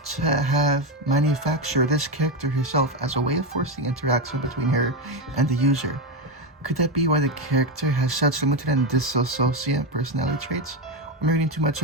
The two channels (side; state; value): both; normal; correlation 0.11